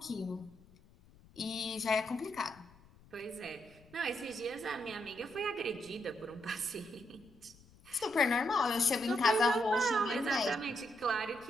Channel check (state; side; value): noise; left; rumble, 26 dB below the sound